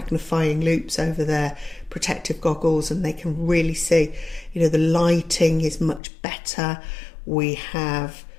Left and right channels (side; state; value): right; drops out; at 6.0 s